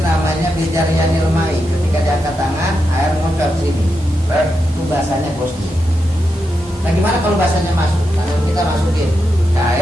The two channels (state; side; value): normal; both; correlation 0.86